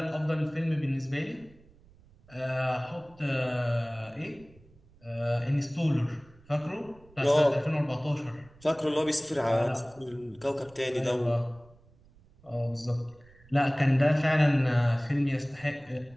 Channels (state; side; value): noise; right; rumble, 27 dB below the sound